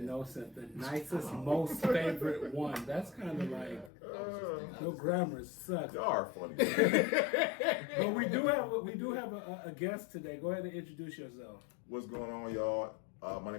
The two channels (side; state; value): right; drops out; at 3.9 s